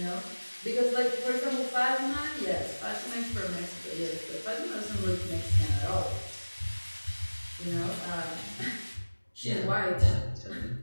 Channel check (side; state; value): both; inverted; correlation -1.00